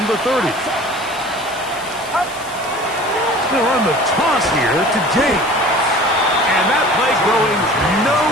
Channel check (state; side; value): noise; left; hiss, 17 dB below the sound